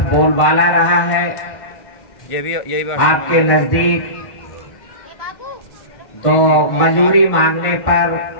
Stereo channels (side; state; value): right; late; 1.1 ms